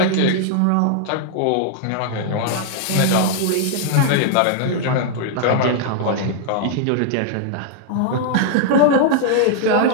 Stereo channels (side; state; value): both; different; correlation -0.01